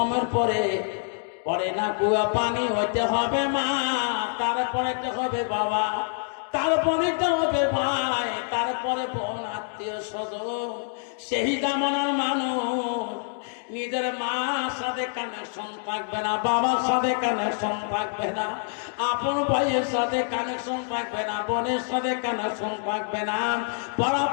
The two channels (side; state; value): right; silent; digital silence